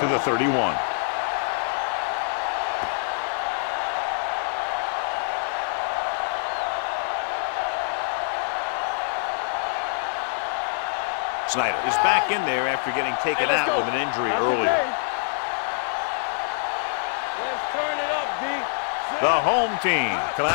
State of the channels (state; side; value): silent; right; 62 dB below the other